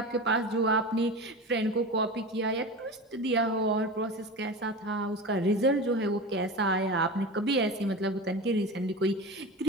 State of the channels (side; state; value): both; normal; correlation 0.28